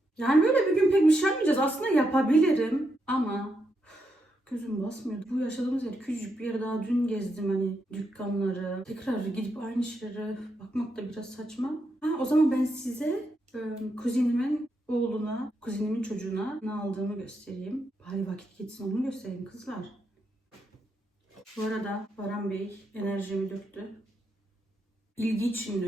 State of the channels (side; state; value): both; normal; correlation 0.82